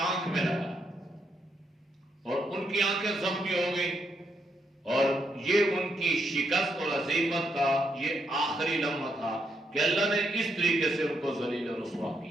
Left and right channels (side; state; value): both; normal; correlation 0.78